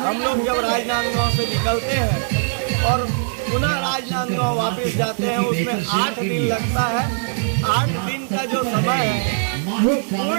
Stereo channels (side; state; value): left; silent; digital silence